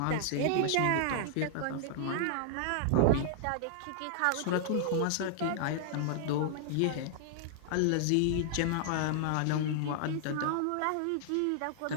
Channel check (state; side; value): different; both; correlation -0.01